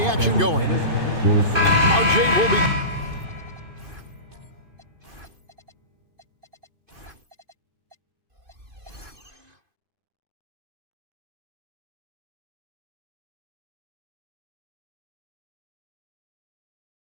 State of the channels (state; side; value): late; left; 2.5 ms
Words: action going. RJ will be...